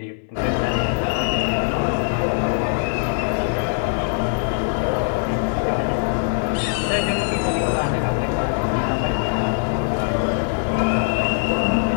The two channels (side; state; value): right; silent; digital silence